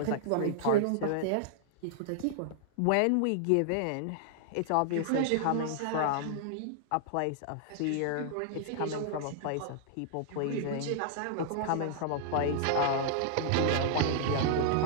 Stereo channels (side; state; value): both; different; correlation -0.01